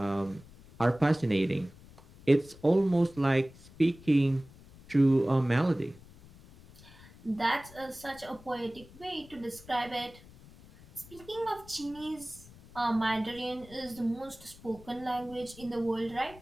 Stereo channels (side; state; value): left; noise; rumble, 21 dB below the sound